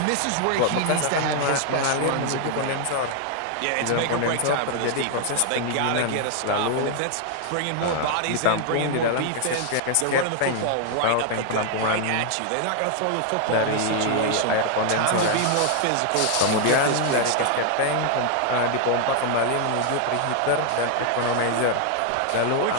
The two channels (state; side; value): different; both; correlation 0.00